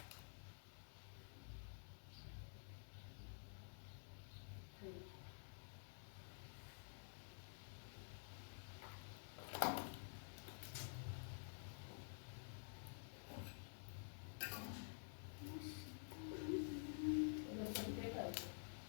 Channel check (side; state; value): right; silent; digital silence